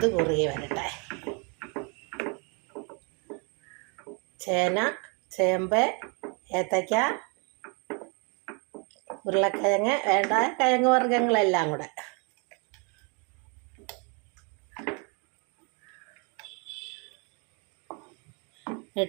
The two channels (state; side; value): quieter; left; 34.4 dB